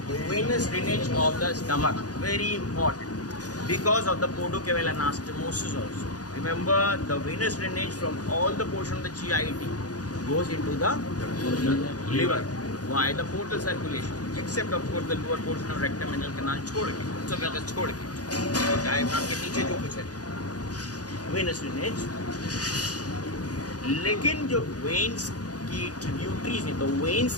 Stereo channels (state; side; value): late; right; 0.68 ms